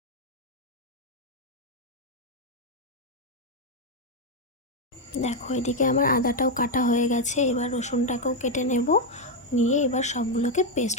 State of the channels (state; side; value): normal; both; correlation 0.03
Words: দেখো, এদিকে আমার আদাটাও কাটা হয়ে গেছে। এবার রসুনটাকেও কেটে নেব, নিয়ে এবার সবগুলোকে পেস্ট